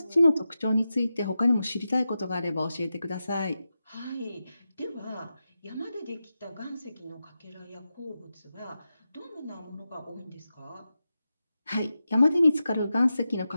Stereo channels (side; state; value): both; inverted; correlation -0.91